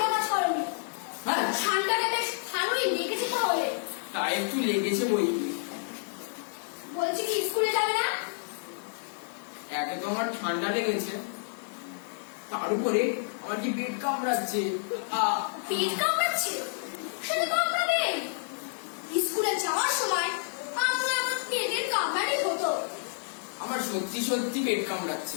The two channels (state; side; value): silent; right; digital silence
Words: কাজ করোনি। হ্যাঁ, ঠান্ডাটা বেশ ভালোই লেগেছে তাহলে। তা একটু লেগেছে বই কি। বলছি কি স্কুলে যাবে না? একে তো আমার ঠান্ডা লেগেছে, তার উপরে আমার কি পেট কামড়াচ্ছে। পেট কামড়াচ্ছে? সেটা কামড়াবে। স্কুলে যাওয়ার সময় আপনার আমার পেটের কামড়ানি হতো। আমার সত্যি সত্যি পেট